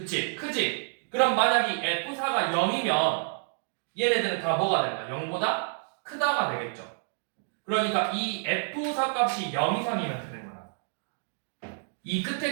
크지? 그럼 만약 이 F4가 0이면 얘네들은 다 뭐가 될까? 0보다 크다가 되겠죠. 그러니까 이 F4 값이 0 이상이면 되는 거야. 이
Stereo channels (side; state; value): left; silent; 59 dB below the other